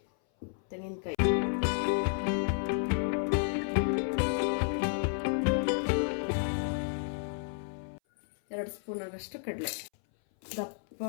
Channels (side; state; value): right; silent; 57 dB below the other